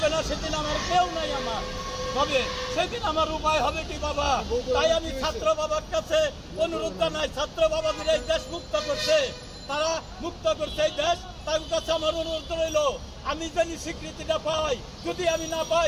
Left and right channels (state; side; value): identical; both; correlation 1.00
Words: না, সেদিন আমার কেউ নাই আমার, তবে সেদিন আমার উপায় হবে কি বাবা? তাই আমি ছাত্র বাবার কাছে অনুরোধ জানাই, ছাত্র বাবাদের এই দেশ মুক্ত করছে, তারা মুক্ত করছে এই দেশ, তার কাছে আমার অনুরোধ রইল আমি যদি স্বীকৃতিটা পাই, যদি আমি না পাই